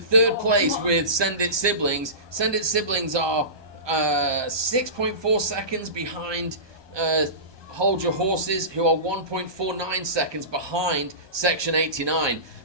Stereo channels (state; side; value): late; left; 1.2 ms